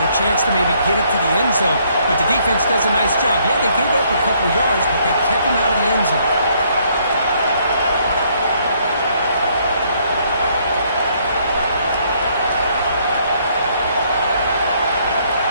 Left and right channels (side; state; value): both; inverted; correlation -0.68